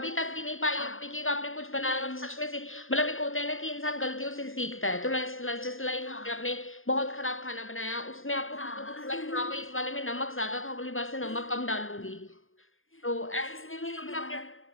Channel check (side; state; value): right; late; 0.59 ms